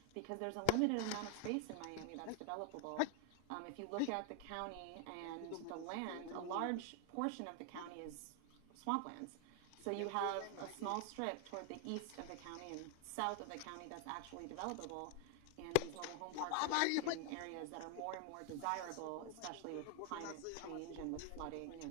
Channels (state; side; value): different; both; correlation 0.00